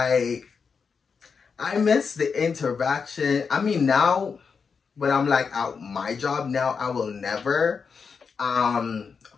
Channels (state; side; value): quieter; right; 5.7 dB